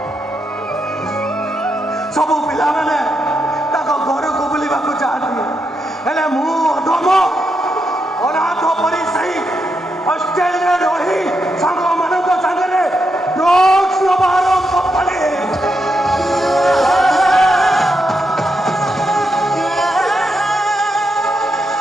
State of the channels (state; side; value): normal; both; correlation 0.83